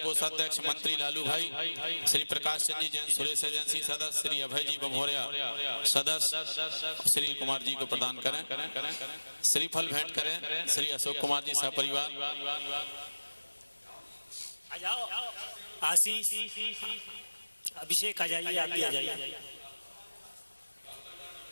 कोषाध्यक्ष मंत्री लालू भाई, श्री प्रकाश चंद जी जैन सुरेश एजेंसी सदस्य, श्री अभय जी बमोरिया सदस्य श्री कुमार जी को प्रदान करें, श्रीफल भेंट करें श्री अशोक कुमार जी सपरिवार। आशीष अभिषेक आ जाइए, आप भी आ जाइए।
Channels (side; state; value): both; inverted; correlation -1.00